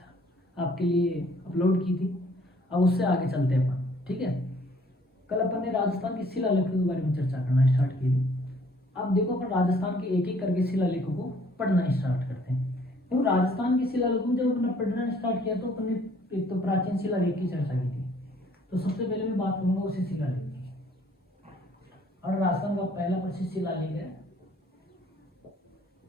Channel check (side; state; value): both; normal; correlation 0.60